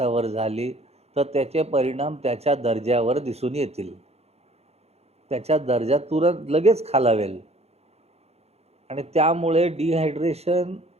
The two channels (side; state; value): left; late; 0.30 ms